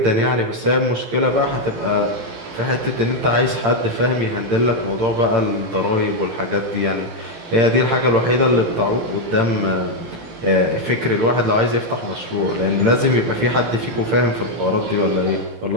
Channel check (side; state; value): left; late; 18 ms